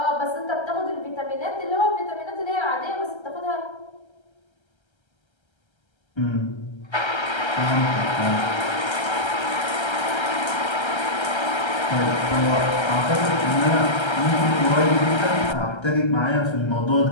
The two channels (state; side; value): late; right; 1.3 ms